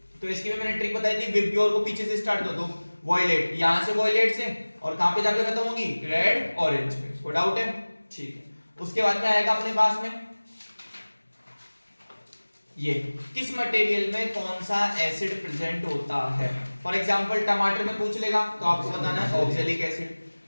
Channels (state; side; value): inverted; both; correlation -1.00